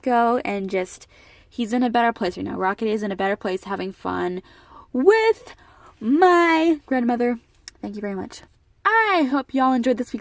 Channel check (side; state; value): both; identical; correlation 1.00